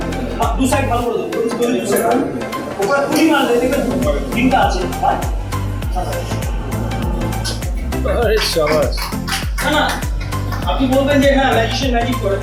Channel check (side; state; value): both; identical; correlation 1.00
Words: দু সাইড ভালো করে দেবো, ওপরে পুরি মারলে দেখবেন তিনটা আছে। না আপনি বলবেন যে হ্যাঁ ম্যাজিশিয়ান ম্যাজিক করে,